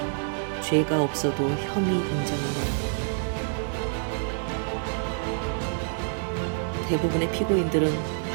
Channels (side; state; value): left; silent; digital silence